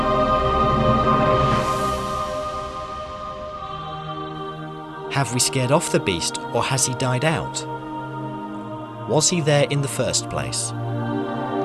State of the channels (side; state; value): both; identical; correlation 1.00